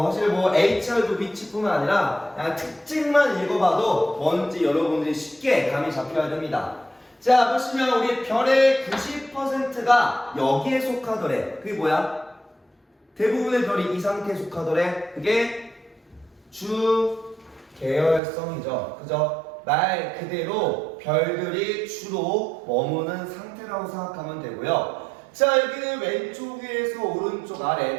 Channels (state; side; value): drops out; left; at 18.2 s